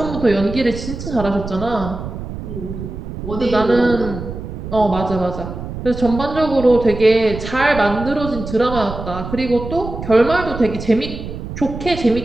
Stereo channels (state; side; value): noise; right; rumble, 9 dB below the sound